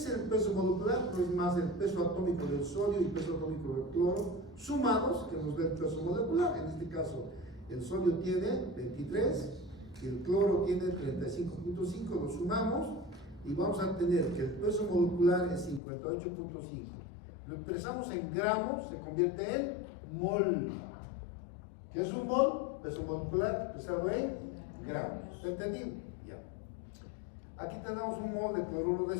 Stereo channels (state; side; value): drops out; right; at 15.8 s